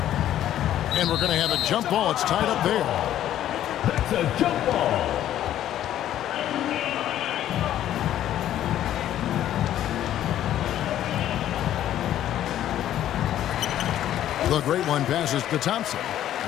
And we're going to have a jump ball. It's tied up there. That's a jump ball. The great one passes to Thompson.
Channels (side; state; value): right; quieter; 11.9 dB